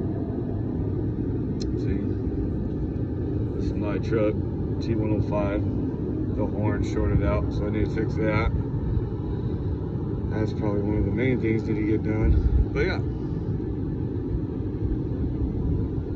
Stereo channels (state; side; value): identical; both; correlation 1.00